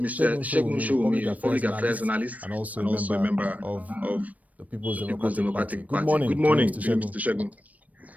Segun Showunmi, Public Affairs Analyst, and also a member of the People's Democratic Party. Good morning, Mr. Segun.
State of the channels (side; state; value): left; late; 0.071 ms